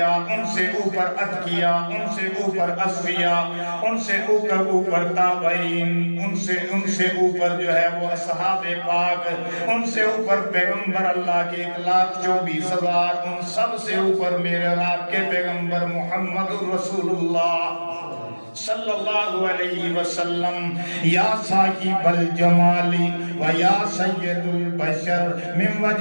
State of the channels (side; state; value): both; inverted; correlation -1.00